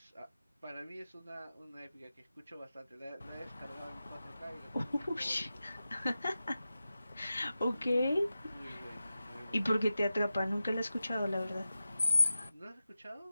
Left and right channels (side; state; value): both; inverted; correlation -0.94